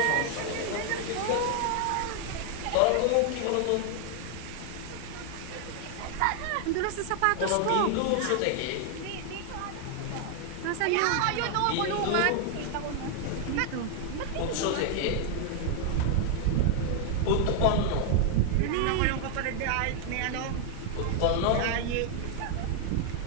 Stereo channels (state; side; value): different; both; correlation 0.00